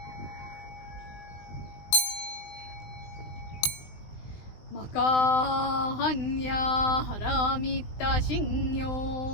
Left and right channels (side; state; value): right; late; 19 ms